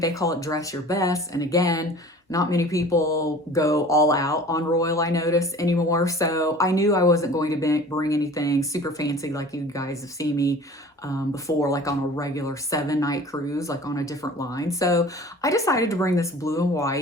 they call it dress your best. And again, not many people go all out on Royal, I notice, anymore. So I knew I wasn't going to bring anything super fancy like you guys have seen me before, like on a regular 7-night cruise, like on a different line. So I decided to bring this blue and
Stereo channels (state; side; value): normal; both; correlation 0.43